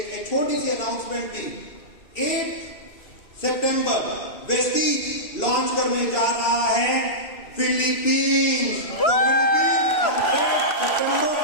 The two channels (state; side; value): late; right; 2.6 ms